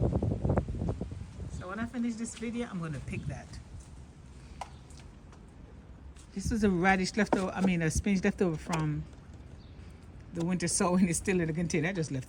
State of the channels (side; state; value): both; identical; correlation 1.00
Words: So when I finish this video, I'm gonna pick that. This was a radish leftover, a spinach leftover from the winter sowing. It's still in the container. I just